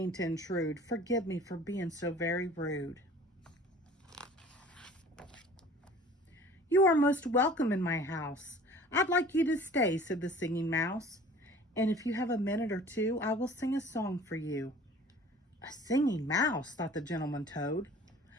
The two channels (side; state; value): both; normal; correlation 0.47